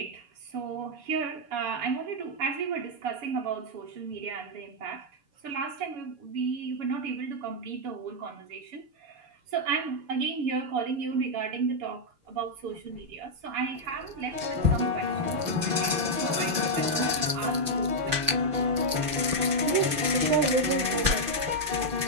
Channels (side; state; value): left; late; 5.9 ms